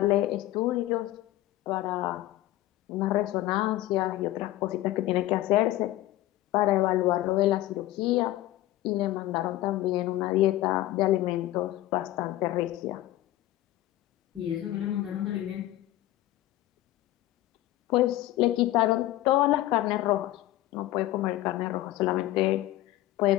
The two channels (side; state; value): right; quieter; 15.4 dB